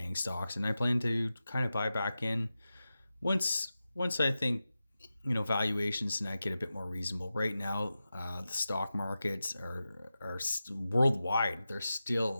stocks, and I plan to kind of buy back in once I think valuations and that get a bit more reasonable. Right now, the stock markets are worldwide. They're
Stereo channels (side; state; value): both; inverted; correlation -0.93